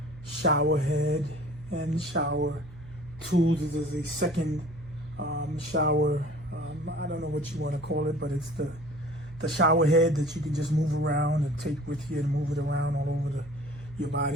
shower head and shower tools. This is a second shower, I don't know what you want to call it, but it's the shower head that you can just move around and take with you and move it around all over your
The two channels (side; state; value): right; noise; hum, 18 dB below the sound